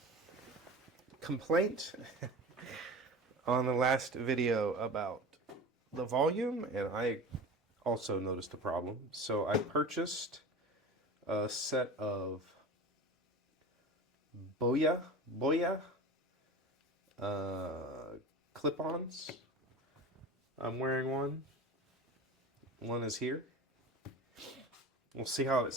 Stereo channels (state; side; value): normal; both; correlation 0.33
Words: complaint on the last video about the volume, and I also noticed a problem. So I purchased a set of Boya clip-ons. I'm wearing one. One is here. We'll see how it